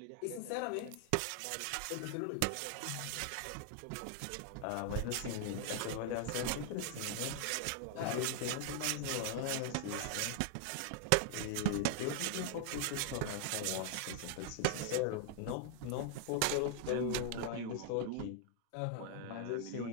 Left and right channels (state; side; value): different; both; correlation 0.00